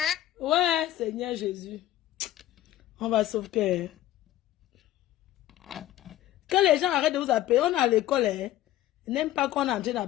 Ouais, Seigneur Jésus. On va sauver. Que les gens arrêtent de vous appeler. On est à l'école, hein. Ils n'aiment pas qu'on est en train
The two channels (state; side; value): quieter; right; 13.9 dB